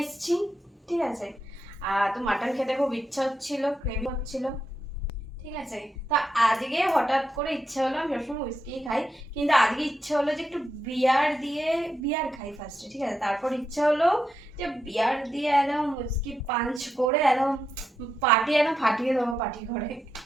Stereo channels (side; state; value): both; normal; correlation 0.84